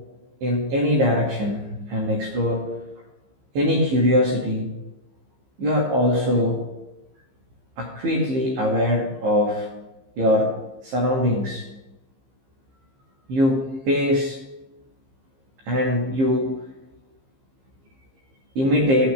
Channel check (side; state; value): left; late; 15 ms